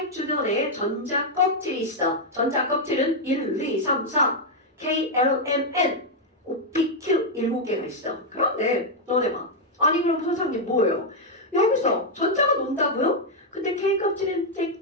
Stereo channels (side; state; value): both; normal; correlation 0.00